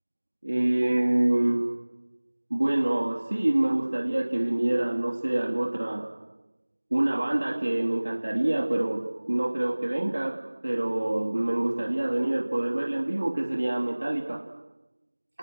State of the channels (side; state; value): both; inverted; correlation -1.00